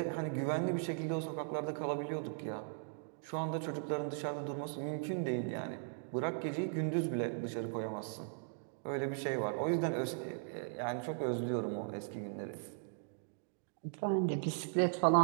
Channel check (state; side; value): silent; left; digital silence